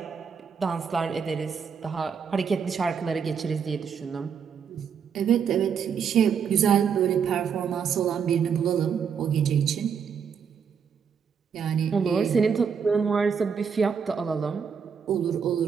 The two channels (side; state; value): left; quieter; 6.8 dB